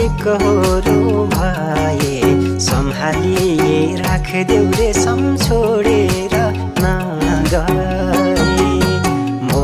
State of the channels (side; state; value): both; identical; correlation 1.00